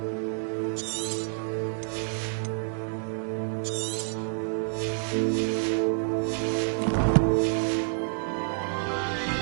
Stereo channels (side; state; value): left; silent; digital silence